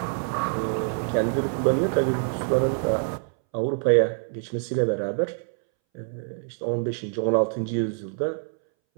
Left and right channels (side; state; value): left; silent; 61 dB below the other